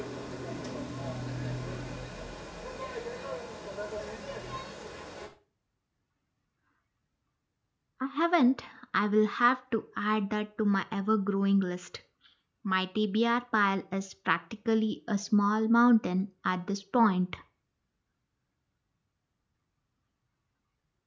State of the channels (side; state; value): both; identical; correlation 1.00